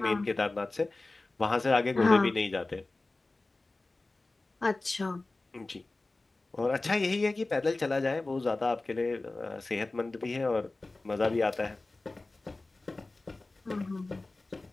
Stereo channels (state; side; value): quieter; right; 3.2 dB